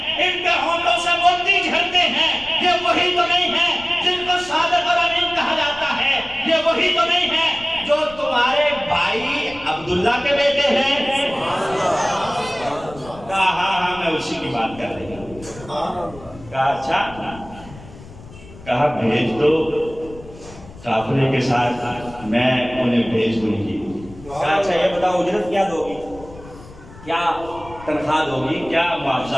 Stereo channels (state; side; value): noise; left; rumble, 18 dB below the sound